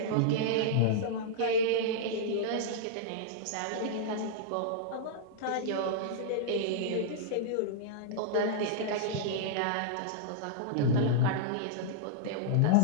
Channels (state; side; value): different; both; correlation -0.01